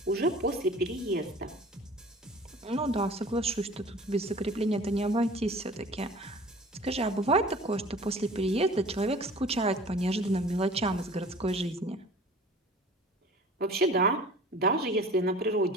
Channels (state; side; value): normal; both; correlation 0.45